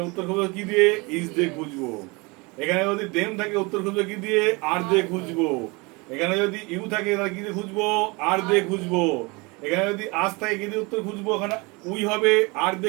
উত্তর খুঁজবো কি দিয়ে? ইজ দিয়ে খুঁজবো। এখানে যদি দেম থাকে উত্তর খুঁজবো কি দিয়ে? আর দিয়ে খুঁজবো। এখানে যদি ইউ থাকে তাহলে কি দিয়ে খুঁজবো? আর দিয়ে খুঁজবো। এখানে যদি আজ থাকে কি দিয়ে উত্তর খুঁজবো? এখানে উই হবে, আর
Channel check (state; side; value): quieter; left; 26.9 dB